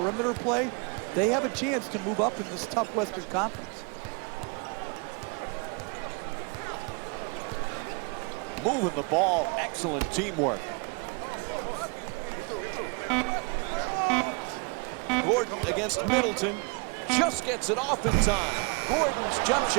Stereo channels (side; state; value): left; quieter; 33.1 dB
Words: play, they have a chance to move up in this tough Western Conference. Moving the ball, excellent teamwork. Gordon against Middleton, just gets it off in time. Gordon's jump